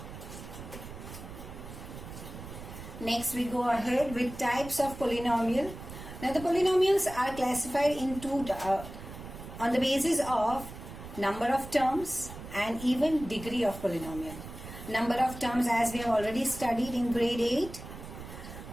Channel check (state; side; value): noise; right; rumble, 12 dB below the sound